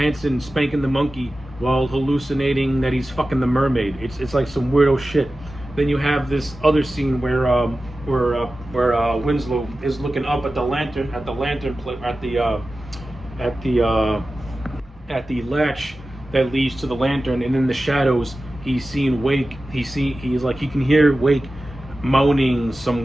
spanking the monkey while hallucinating that he's fucking the mermaid. It's like some weirdo shit. Then you have this other scene where Winslow is looking up at the latch that leads to the lantern, and in the shadows he's seeing Wake. He can hear Wake moaning some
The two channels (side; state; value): both; normal; correlation 0.94